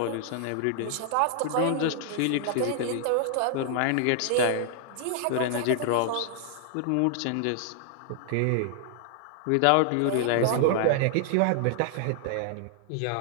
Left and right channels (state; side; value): different; both; correlation -0.01